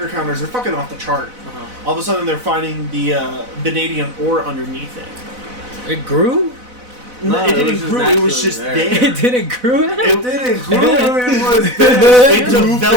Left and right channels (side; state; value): left; late; 4.0 ms